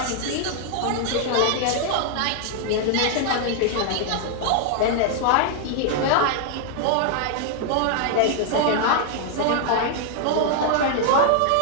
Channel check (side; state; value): both; different; correlation 0.00